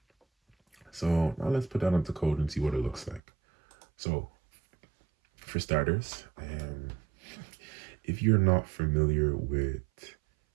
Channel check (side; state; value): left; drops out; at 3.2 s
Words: So now let's put that into code and see what it looks like. So for starters, if you're not familiar with